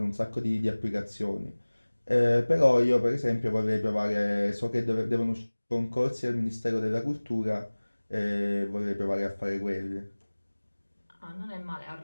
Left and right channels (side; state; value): both; inverted; correlation -1.00